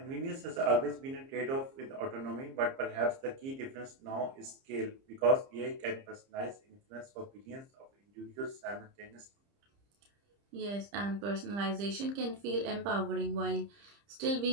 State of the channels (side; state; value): left; late; 30 ms